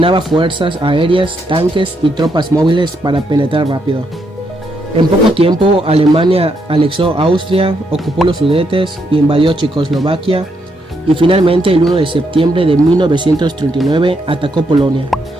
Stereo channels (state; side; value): normal; both; correlation 0.78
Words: fuerzas aéreas, tanques y tropas móviles para penetrar rápido. En poco tiempo, Alemania anexó Austria, ocupó los Sudetes, invadió Checoslovaquia y finalmente el 1 de septiembre de 1939 atacó Polonia.